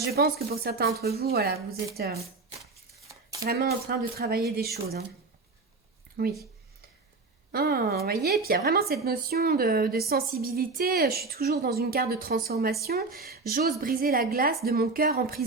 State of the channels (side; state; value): left; quieter; 3.8 dB